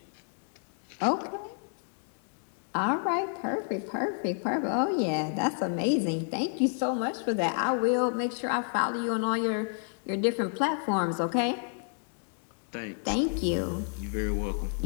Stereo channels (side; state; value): right; silent; 58 dB below the other